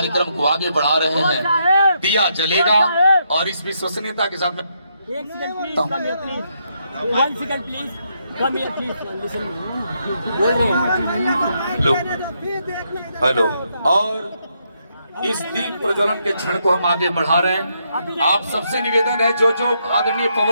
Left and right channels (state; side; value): inverted; both; correlation -0.78